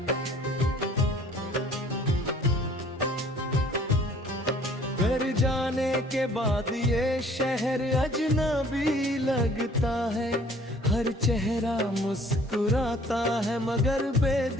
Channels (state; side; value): normal; both; correlation 0.55